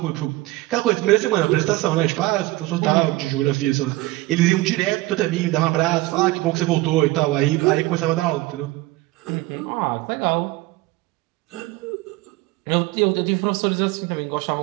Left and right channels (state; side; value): quieter; left; 19.1 dB